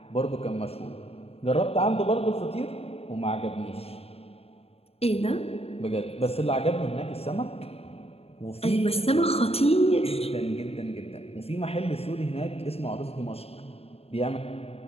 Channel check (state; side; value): late; right; 0.29 ms